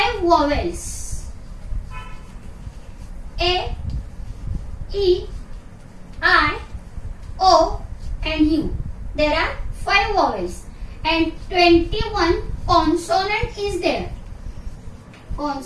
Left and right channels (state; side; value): identical; both; correlation 1.00